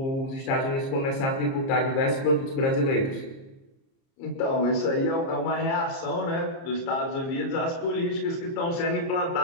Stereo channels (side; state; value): right; late; 30 ms